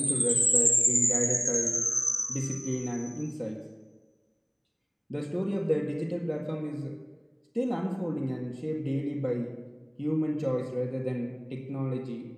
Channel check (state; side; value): identical; both; correlation 1.00